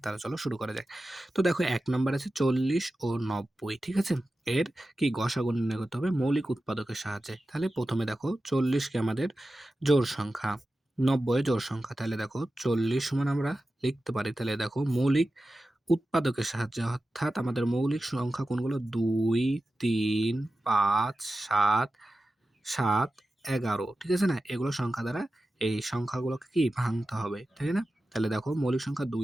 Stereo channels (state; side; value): normal; both; correlation 0.93